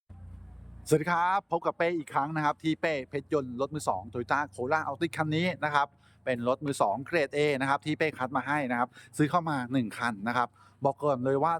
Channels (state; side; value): identical; both; correlation 1.00